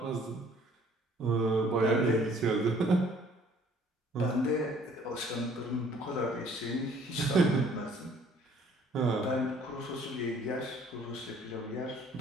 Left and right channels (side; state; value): both; normal; correlation 0.58